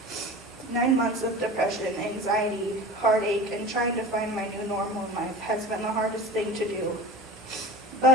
9 months of depression, anxiety, heartache, and trying to find my new normal in life has been the hardest thing to do.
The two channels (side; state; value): both; normal; correlation 0.36